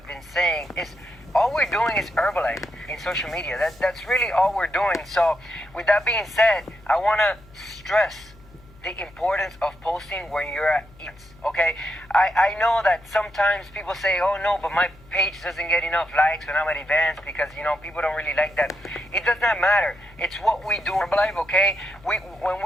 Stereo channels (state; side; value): noise; left; hum, 25 dB below the sound